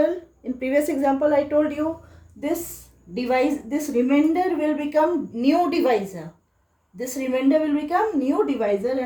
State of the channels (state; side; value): identical; both; correlation 1.00